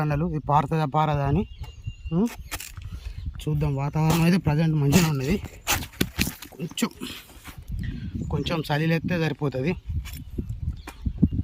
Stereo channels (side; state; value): both; identical; correlation 1.00